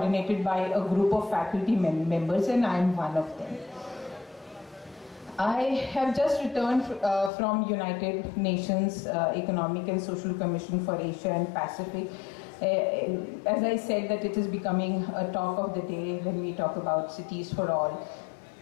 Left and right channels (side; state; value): right; drops out; at 7.3 s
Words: by a group of faculty members, and I am one of them. I have just returned from United Nations Economic and Social Commission for Asia and Pacific. As I said, that it is becoming a talk of the day when we talk about cities for all.